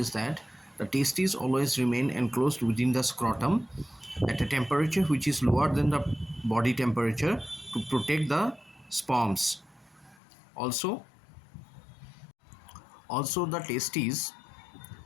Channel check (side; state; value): right; drops out; at 10.2 s